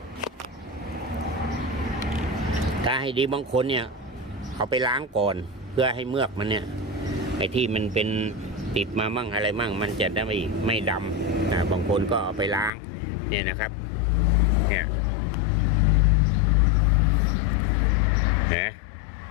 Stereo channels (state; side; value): drops out; right; at 12.7 s